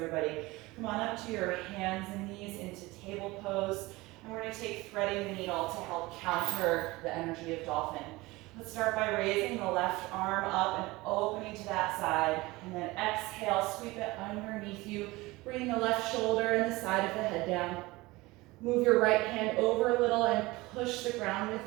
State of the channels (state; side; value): quieter; left; 21.1 dB